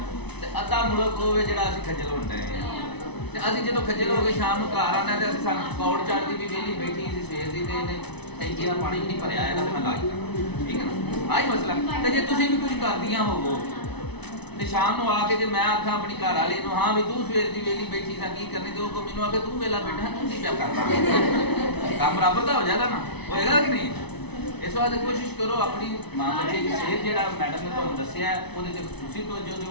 تے ادھا ملک ہوے جڑا اسی کھجل ہوندے ہیں. تے اسی جدوں کھجل ہو کے شام نوں گھر آنا تے اسی سان پکوڑ چڑھدی بھی ویلی بیٹھی سی سویر دی تے ٹینکی دا پانی نہیں بھریا ہے تے میں لا کے ٹھیک ہے نا. آہی مسئلہ. تے جے تسی بھی کچھ کردیاں ہوو تے شام نوں آ کے جے میں آکھاں اپنی گھر والی نوں ہاں بھی تو سویر دی ویلی بیٹھی سا کی کرنی تے او کو مینوں آ کے تو ویلا بیٹھا تو کی پیا کرنا کام برابر دا ہو جاتا نا ہوئے گا کہ نہیں. اس واسطے کوشش کرو اپنی ماں بچے کی صحت جہاں میڈم نے تمہیں دسیا ہے وہ خصوصی توجہ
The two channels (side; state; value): right; late; 0.99 ms